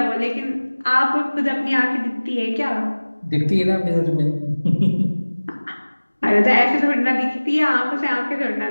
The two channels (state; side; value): inverted; both; correlation -1.00